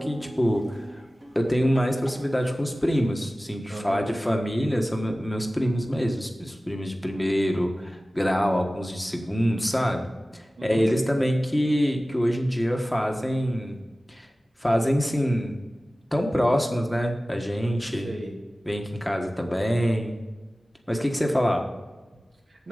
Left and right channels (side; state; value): both; normal; correlation 0.97